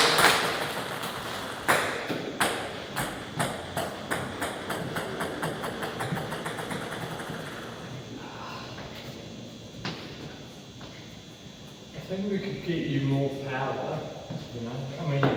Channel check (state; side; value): identical; both; correlation 1.00